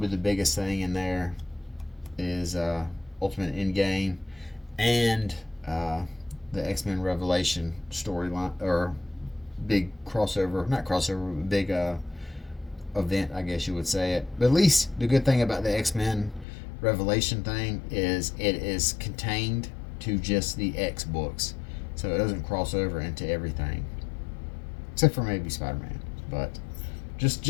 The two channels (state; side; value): drops out; right; at 16.4 s